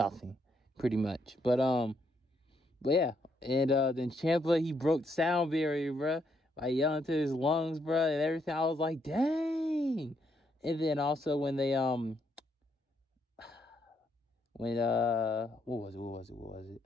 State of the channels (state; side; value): normal; both; correlation 0.75